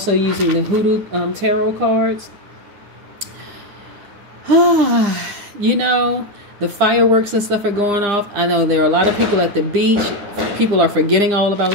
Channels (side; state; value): left; late; 9.9 ms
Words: using the Hoodoo tarot cards. You know, the fireworks and stuff are going off. I know there are a lot of people at the beach. People are forgetting all about